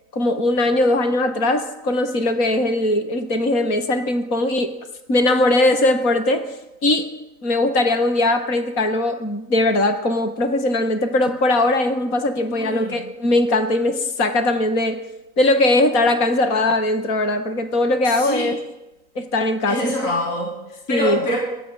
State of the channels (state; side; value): late; right; 3.9 ms